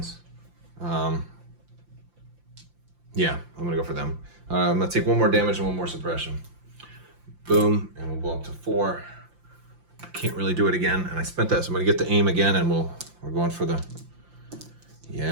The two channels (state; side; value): late; left; 5.8 ms